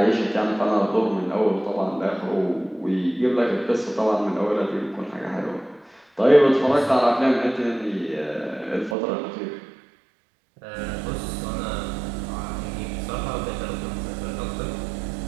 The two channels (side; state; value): left; drops out; at 9.0 s